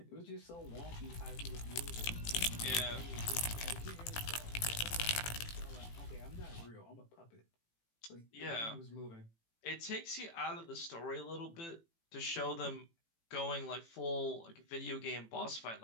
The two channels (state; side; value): late; right; 18 ms